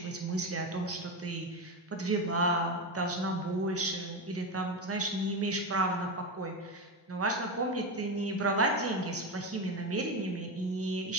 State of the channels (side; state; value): both; normal; correlation 0.15